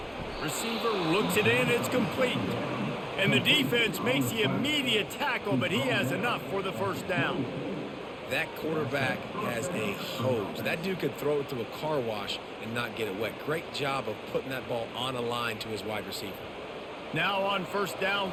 Receiver looks it in, it's complete. And the defense makes the immediate tackle, but he has enough for the first down. That quarterback has a hose. That dude could throw it to a car wash and not get it wet. Great job of putting that ball on a line to his wide receiver. Now on first down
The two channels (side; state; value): both; identical; correlation 1.00